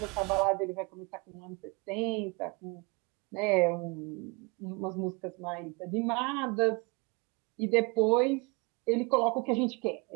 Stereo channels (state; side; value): quieter; left; 29.8 dB